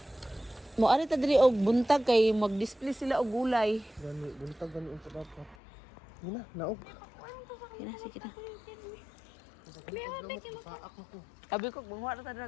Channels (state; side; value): drops out; right; at 5.6 s